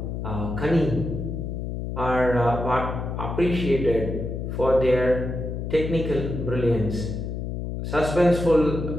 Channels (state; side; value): noise; left; hum, 4 dB below the sound